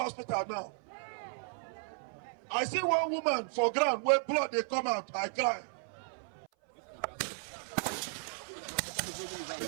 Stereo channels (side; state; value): left; silent; 55 dB below the other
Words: now. I see one woman for ground where blood they come out. I cry.